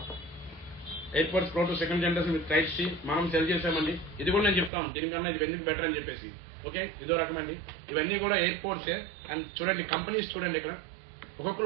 AirPods pro two second generation with type C మనం సెల్ చేసామండి. ఇది కూడా నేను చెప్తాను దీనికన్నా ఇది ఎందుకు బెటర్ అని చెప్పేసి. ఓకే, ఇదో రకం అండి, ఇవన్నీ కూడా ఎయిర్పోర్ట్సే. అండ్ చూడండి కంపెనీస్ చూడండి, ఇక్కడ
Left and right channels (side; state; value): left; drops out; at 4.7 s